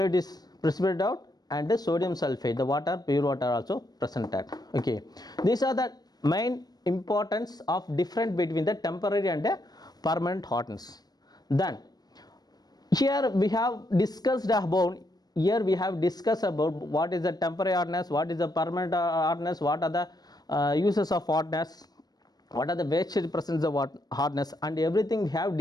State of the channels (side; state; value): right; late; 0.19 ms